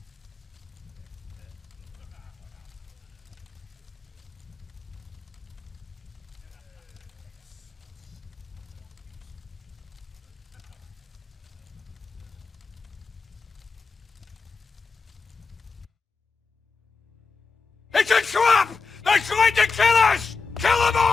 It's a trap! They're trying to kill us! Kill them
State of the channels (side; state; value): right; quieter; 4.6 dB